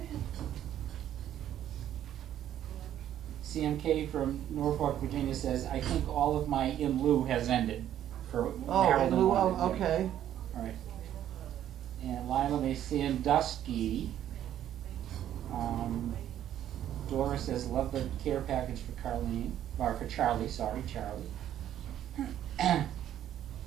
CMK from Norfolk, Virginia says, I think all of my in lieu has ended. For Oh, Maryland in lieu wanted, of, yeah. okay. All right. And Lila Sandusky. Dora says, love the care package for Carlene. Or for Charlie, sorry, Charlie.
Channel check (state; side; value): quieter; left; 11.2 dB